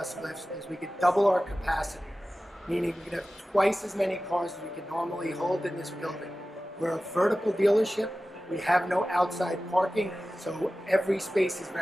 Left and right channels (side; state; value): both; normal; correlation 0.96